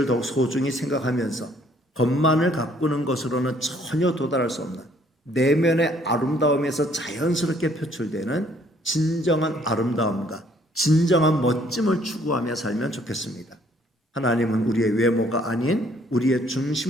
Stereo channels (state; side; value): normal; both; correlation 0.63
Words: 더욱 소중히 생각하면서 겉만을 가꾸는 것으로는 전혀 도달할 수 없는 내면의 아름다움에서 자연스럽게 표출되는 진정한 아름다움과 진정한 멋짐을 추구하며 살면 좋겠습니다. 하나님은 우리의 외모가 아닌 우리의